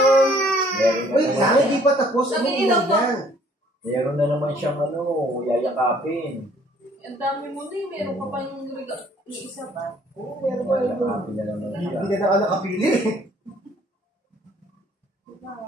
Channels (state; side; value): normal; both; correlation 0.60